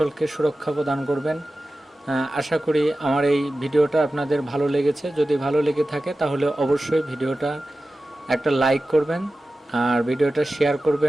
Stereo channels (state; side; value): normal; both; correlation 0.95